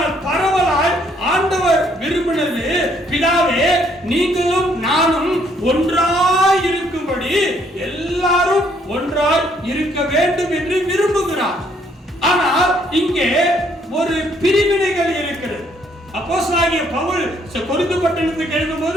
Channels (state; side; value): normal; both; correlation 0.67